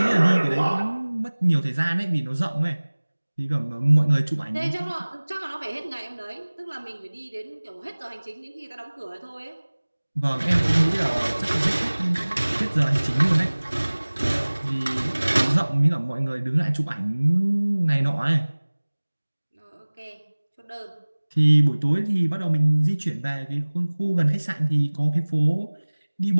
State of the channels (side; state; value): both; inverted; correlation -1.00